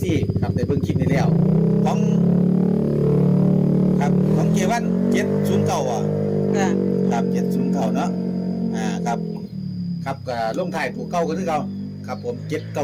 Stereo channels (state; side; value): identical; both; correlation 1.00